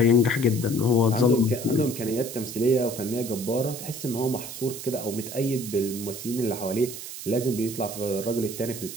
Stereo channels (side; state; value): right; noise; hiss, 10 dB below the sound